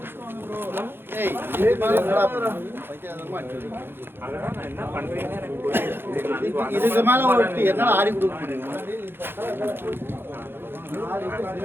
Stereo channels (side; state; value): left; late; 0.10 ms